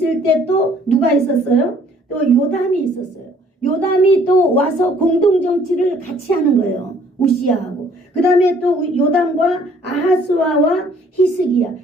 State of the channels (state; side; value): normal; both; correlation 0.59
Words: 때 또 누가 있었어요? 또 요담이 있었어요. 요담이 또 와서 공동 정치를 같이 하는 거예요. 우시야하고. 그 다음에 또 요담과 아하스와와 히스기야